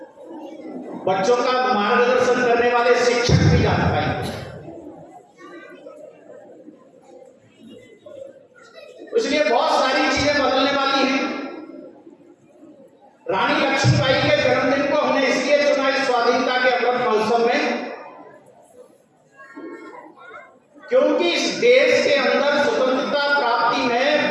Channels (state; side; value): identical; both; correlation 1.00